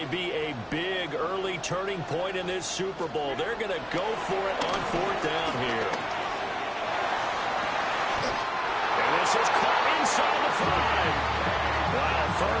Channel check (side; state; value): both; identical; correlation 1.00